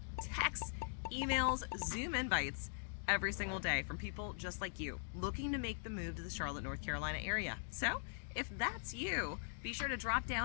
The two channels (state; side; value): silent; right; digital silence